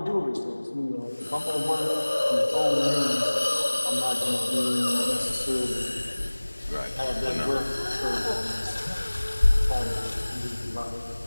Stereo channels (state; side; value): inverted; both; correlation -1.00